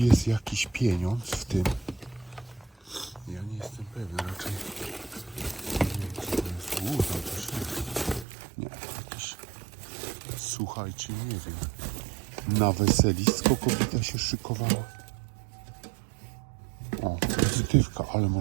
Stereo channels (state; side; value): drops out; left; at 8.2 s